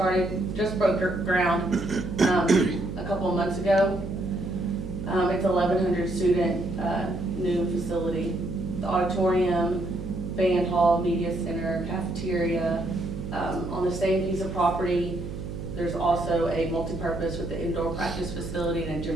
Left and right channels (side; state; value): right; noise; hum, 8 dB below the sound